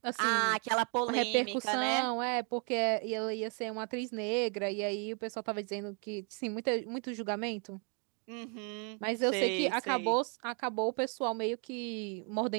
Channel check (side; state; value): left; quieter; 38.8 dB